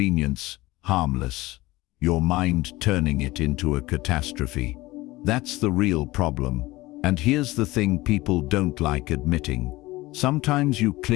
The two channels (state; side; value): quieter; right; 19.6 dB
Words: harmless. Your mind turning it into a catastrophe. That's the real problem. And here's the thing people don't like admitting. Sometimes you